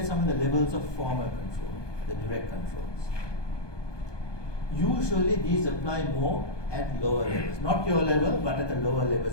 some of the levels of formal control, the direct controls. Usually these apply more at lower levels, not your level, but at the lower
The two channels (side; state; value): right; late; 1.2 ms